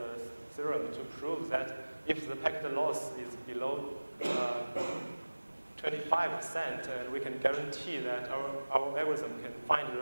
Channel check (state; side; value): inverted; both; correlation -1.00